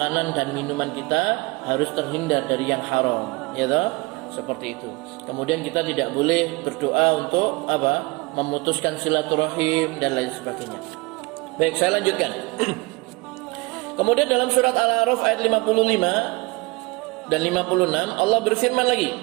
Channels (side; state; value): left; quieter; 25.3 dB